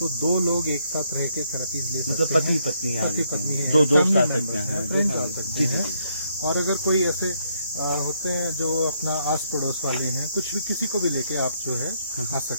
2 लोग एक साथ रह के थेरेपीज ले सकते हैं। पति पत्नी है, 2 दोस्त आ सकते हैं, फ्रेंड्स आ सकते हैं। और अगर कोई ऐसे होते हैं जो अपना आस पड़ोस वाले हैं, कुछ भी, किसी को भी लेके आप जो है आ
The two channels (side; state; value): both; inverted; correlation -0.73